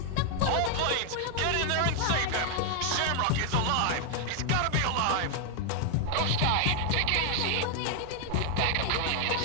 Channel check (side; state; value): both; different; correlation 0.00